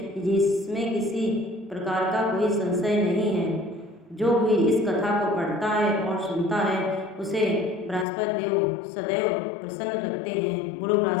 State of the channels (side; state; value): right; drops out; at 8.1 s